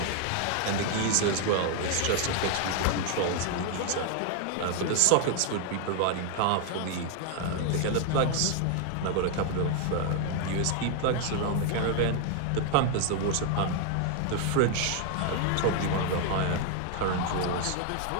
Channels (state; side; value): different; both; correlation 0.00